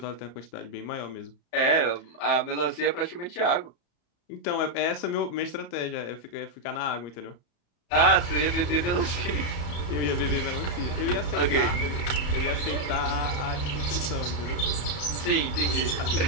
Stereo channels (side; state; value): right; late; 34 ms